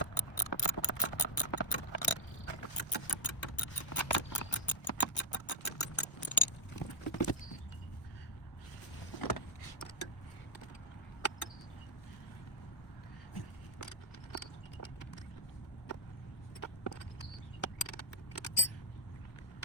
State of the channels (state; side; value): late; right; 1.1 ms